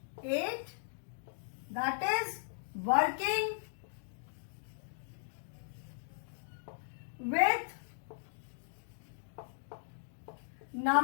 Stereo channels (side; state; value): right; silent; digital silence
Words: 8, that is working with